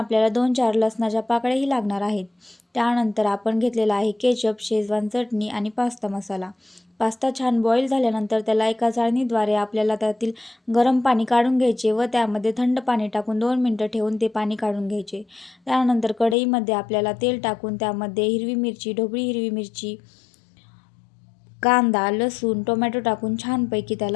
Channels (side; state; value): right; drops out; at 16.4 s